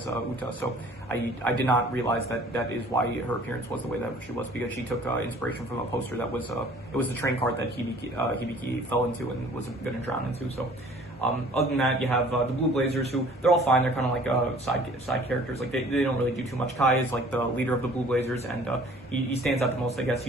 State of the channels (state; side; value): normal; both; correlation 0.51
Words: Uta. So I did not realize that is why her appearance was the way that she was, because she took inspiration from a poster that was it was the train cart that Hibiki fell into and was going to drown into. So. Other than that, you have the Blue Blazers, who they're all fine. They're kind of like side characters. Like they don't really do too much. Kai is like the leader of the Blue Blazers, and he stands out the most. I guess